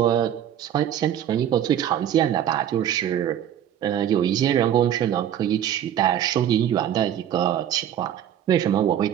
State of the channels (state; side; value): quieter; left; 10.4 dB